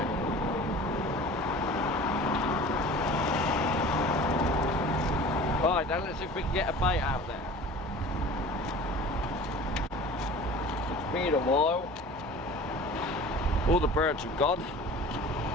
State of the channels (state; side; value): normal; both; correlation 0.41